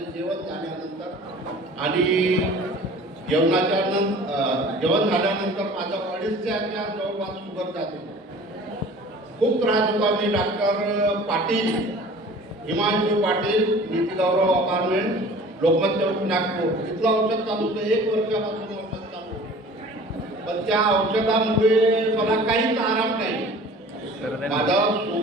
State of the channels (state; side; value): normal; both; correlation 0.45